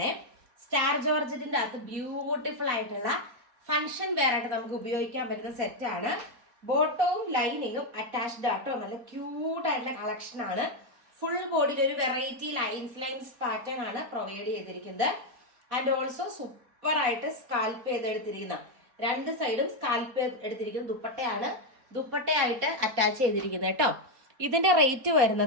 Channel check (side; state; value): left; late; 3.8 ms